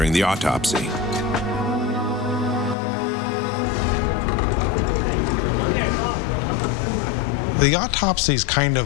the autopsy. The autopsy is kind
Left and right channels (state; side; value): drops out; right; at 2.8 s